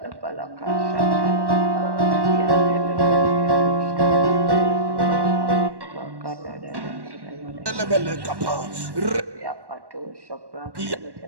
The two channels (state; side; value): late; left; 1.1 ms